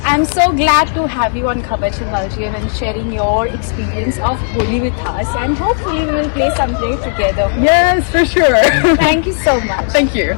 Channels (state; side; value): silent; right; 71 dB below the other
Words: I'm so glad to have you on Khabar Se Belgium and sharing your experience of Holi with us, and hopefully we will play someday together. Yes, for sure. Thank you so much. Thank